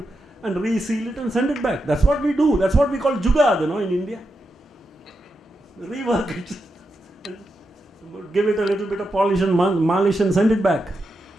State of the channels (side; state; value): both; normal; correlation 0.86